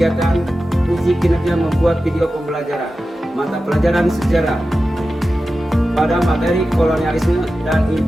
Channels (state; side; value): normal; both; correlation 0.93